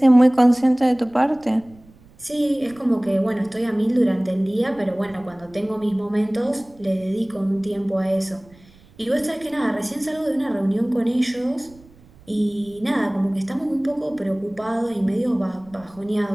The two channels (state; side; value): noise; right; rumble, 26 dB below the sound